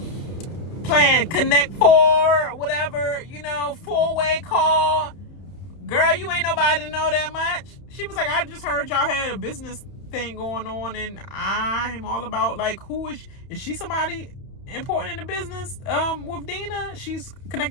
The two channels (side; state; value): right; late; 31 ms